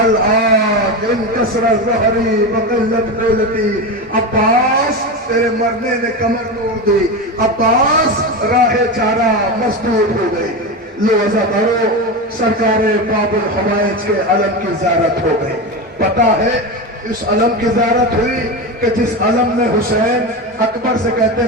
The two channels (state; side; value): normal; both; correlation 0.20